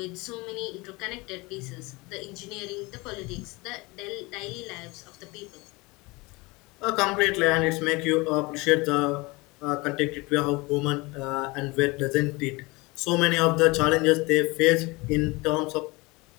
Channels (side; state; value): right; quieter; 24.2 dB